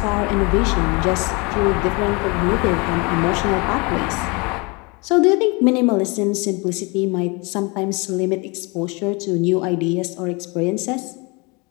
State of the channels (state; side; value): quieter; right; 28.9 dB